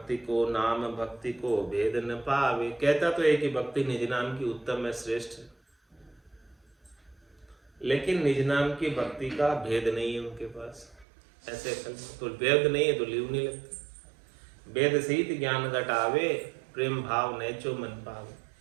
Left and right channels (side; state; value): left; drops out; at 11.1 s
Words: को नाम भक्ति को भेद न पावे, कहता तो है कि भक्ति निज नाम की उत्तम है, श्रेष्ठ है, लेकिन निज नाम की भक्ति का भेद नहीं है उनके पास। ऐसे तो भेद नहीं है तो लीव नहीं लगती। वेद सहित ज्ञान घटावे, प्रेम भाव नैचो मन पावे,